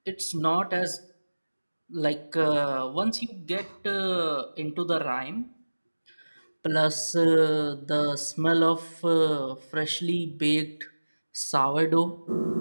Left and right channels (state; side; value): inverted; both; correlation -1.00